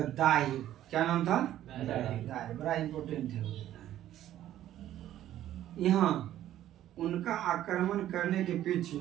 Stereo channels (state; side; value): quieter; left; 12.6 dB